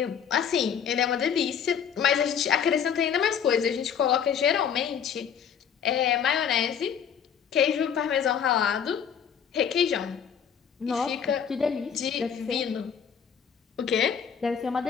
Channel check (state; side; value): quieter; right; 7.8 dB